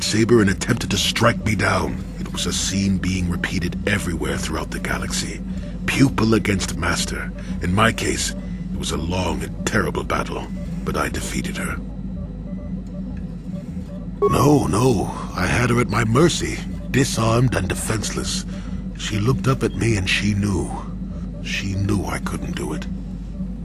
and attempted to strike me down. It was a scene being repeated everywhere throughout the galaxy. Pupil against master. In my case, it was a long and terrible battle, but I defeated her. No, I had her at my mercy. Disarmed and defenseless. She looked up at me and she knew. She knew I couldn't do it.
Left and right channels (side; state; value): both; identical; correlation 1.00